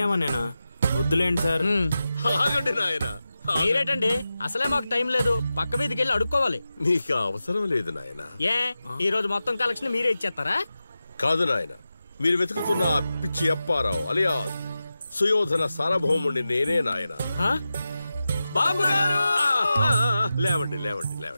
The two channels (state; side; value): inverted; both; correlation -0.93